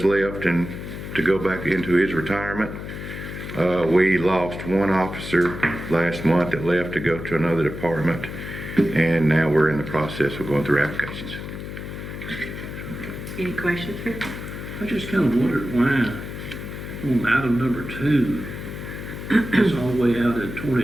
left, and to go back into his retirement. We lost one officer last month that left to go to another department, and now we're in the process of going through applications. Any questions, Rick? I just kind of wondered why on item number 2, it's all the way out in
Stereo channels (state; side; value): noise; left; hum, 8 dB below the sound